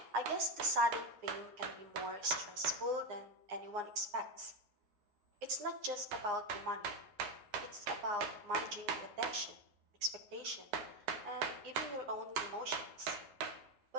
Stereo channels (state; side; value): late; left; 9.7 ms